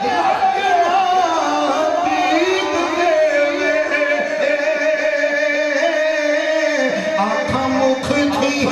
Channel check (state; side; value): identical; both; correlation 1.00